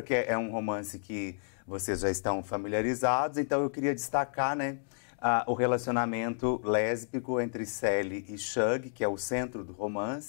que é um romance que vocês já estão familiarizados, então eu queria destacar, né, o relacionamento lésbico entre Sally e Shug, que é o centro do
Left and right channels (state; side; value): silent; right; digital silence